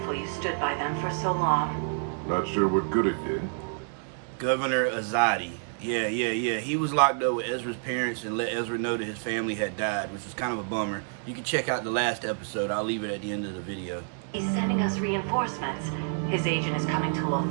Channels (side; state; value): left; silent; 59 dB below the other